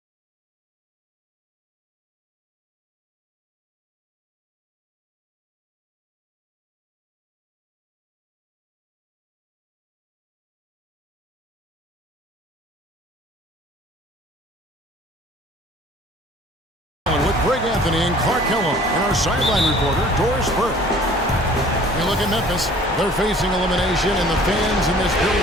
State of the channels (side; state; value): both; normal; correlation 0.51